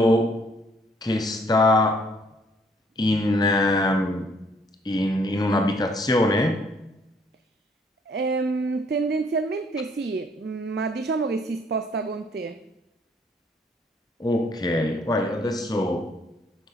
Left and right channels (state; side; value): normal; both; correlation 0.64